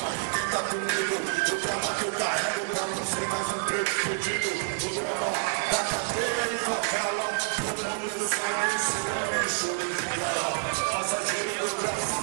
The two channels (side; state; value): left; silent; digital silence